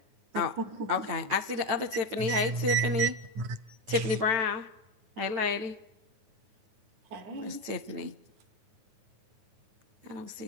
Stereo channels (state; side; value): late; left; 9.0 ms